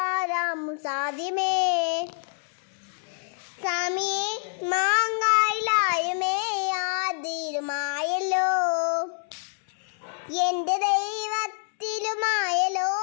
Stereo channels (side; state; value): right; silent; 60 dB below the other